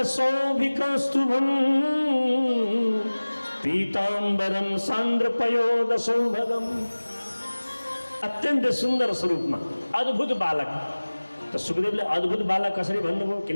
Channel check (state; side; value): inverted; both; correlation -1.00